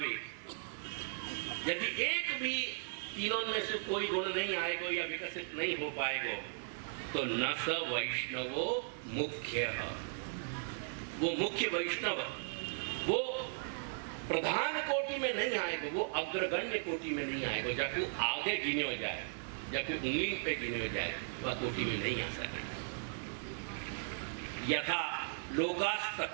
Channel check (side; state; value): left; silent; digital silence